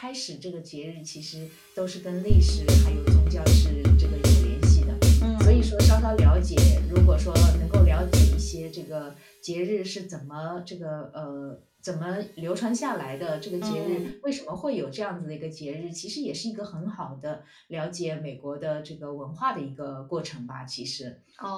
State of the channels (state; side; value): identical; both; correlation 1.00